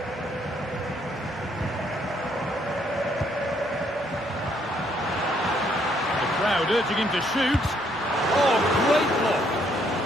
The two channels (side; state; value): both; normal; correlation 0.69